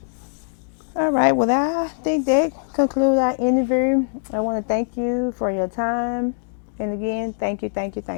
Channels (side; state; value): right; silent; digital silence